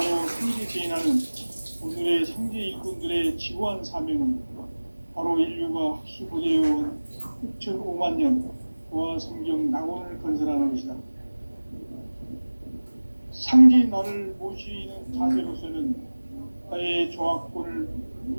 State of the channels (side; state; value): both; inverted; correlation -1.00